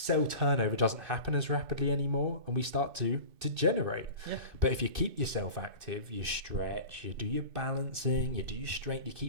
turnover doesn't happen as rapidly anymore and we start to degenerate. Yeah. But if you keep yourself active, you stretch, you do your balancing, you do your strength, you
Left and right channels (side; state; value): left; late; 2.6 ms